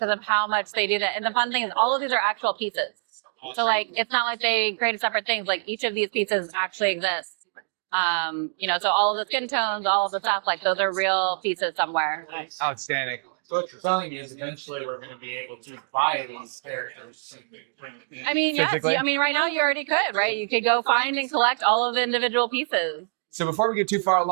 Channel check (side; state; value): left; silent; digital silence